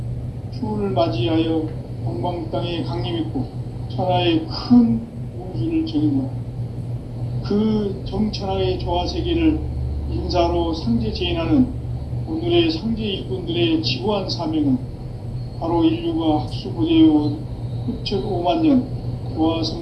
추운을 맞이하여 동방 땅에 강림했고 천하의 큰 운수를 정인노라. 그 정천하의 조화 세계를 인사로 상제 제인하는 오늘의 상제 일꾼들의 지구한 사명은 바로 인류가 학수고대해온 흡천 5만 년 조화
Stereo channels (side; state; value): both; identical; correlation 1.00